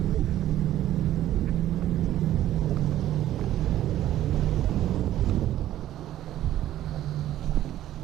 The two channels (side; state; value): left; quieter; 13.0 dB